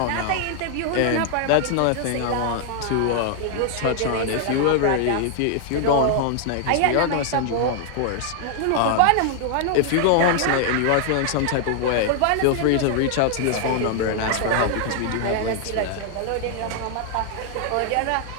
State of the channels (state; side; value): different; both; correlation 0.00